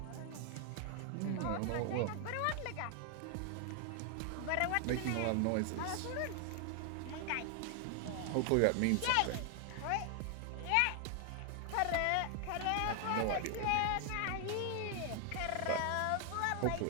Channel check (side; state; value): both; different; correlation 0.00